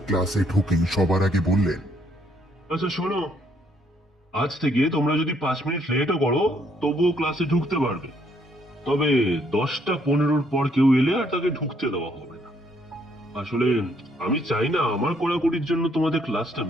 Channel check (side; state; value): both; normal; correlation 0.69